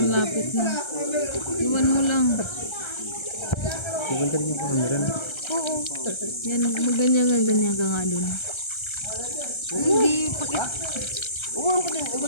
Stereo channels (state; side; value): late; right; 1.3 ms